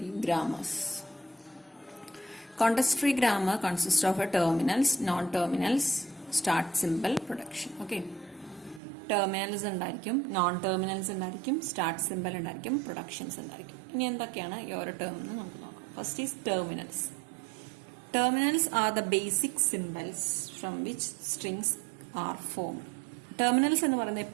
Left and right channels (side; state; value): left; drops out; at 8.8 s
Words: grammars. Context-free grammar consists of a terminals, non-terminals, start symbol, production. Okay. Terminals ഉണ്ടായിരിക്കും, non-terminals ഉണ്ടായിരിക്കും, start symbol ഉണ്ടായിരിക്കും, productions ഉണ്ടായിരിക്കും. ഇനി എന്തൊക്കെയാണ് ഈ ഓരോ ടേം എന്ന് നമുക്ക് നോക്കാം. First is terminals. Terminals are the basic symbols from which strings are formed. Terminals എന്ന് പറയുന്നത്